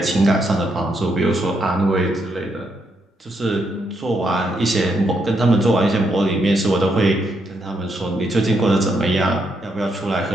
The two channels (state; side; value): normal; both; correlation 0.78